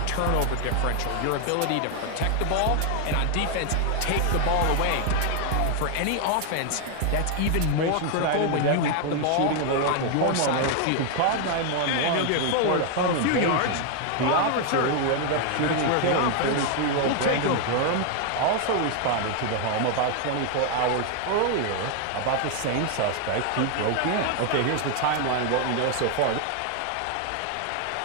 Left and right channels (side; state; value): both; different; correlation 0.00